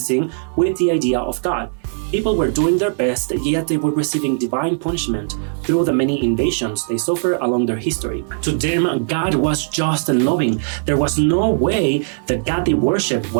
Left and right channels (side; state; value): left; silent; digital silence